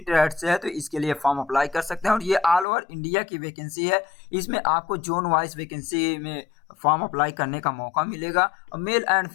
ट्रेड से है तो इसके लिए फॉर्म अप्लाई कर सकते हैं और ये ऑल ओवर इंडिया की वैकेंसी है। इसमें आपको जोन वाइज वैकेंसी में फॉर्म अप्लाई करने का मौका मिलेगा और मेल एंड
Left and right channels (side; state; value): right; drops out; at 2.7 s